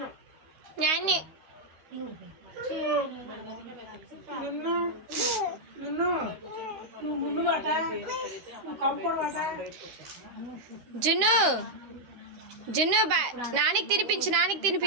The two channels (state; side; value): late; left; 13 ms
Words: నాన్ని జున్ను జున్ను నానికి తినిపించు నానికి